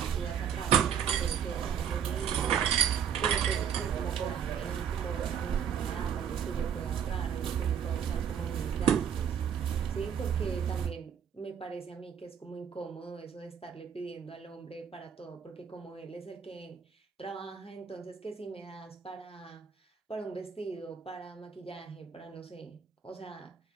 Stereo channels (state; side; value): quieter; left; 8.1 dB